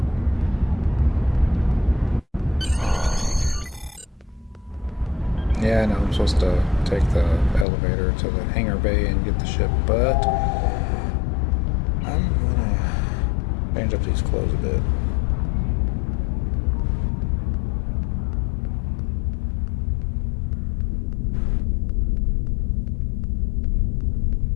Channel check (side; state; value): right; drops out; at 7.7 s